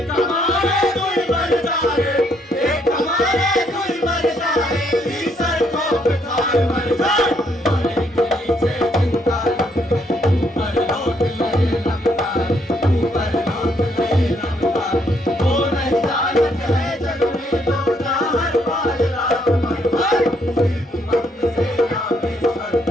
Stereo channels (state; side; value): normal; both; correlation 0.71